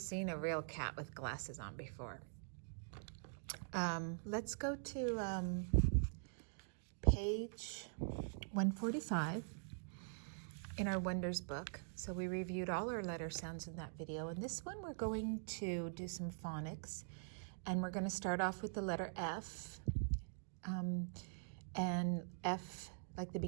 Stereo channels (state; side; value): silent; left; digital silence